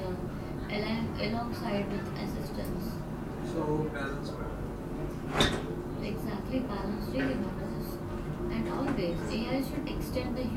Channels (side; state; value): both; identical; correlation 1.00